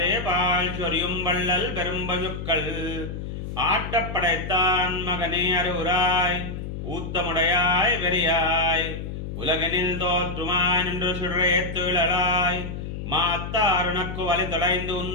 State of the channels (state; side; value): noise; left; hum, 7 dB below the sound